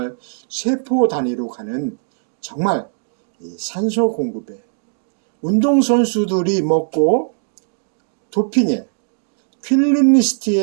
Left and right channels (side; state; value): left; silent; digital silence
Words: 세포 단위로 가는 정말 산소 공급에 운동선수들이 먹고 도핑에